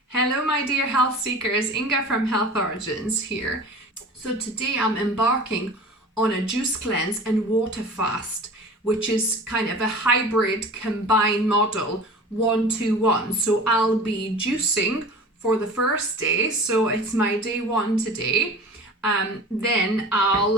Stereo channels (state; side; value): normal; both; correlation 0.39